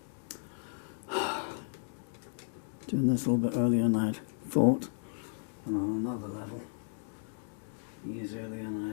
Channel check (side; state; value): right; silent; digital silence